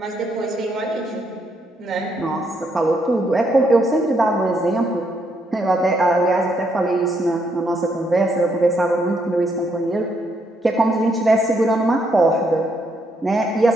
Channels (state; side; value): normal; both; correlation 0.75